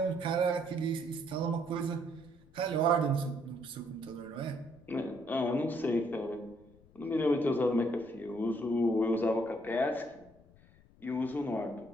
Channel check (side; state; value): left; noise; rumble, 27 dB below the sound